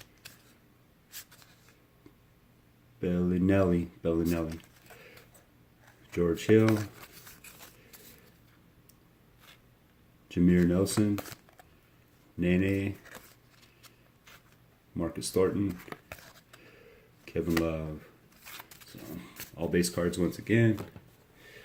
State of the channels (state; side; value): identical; both; correlation 1.00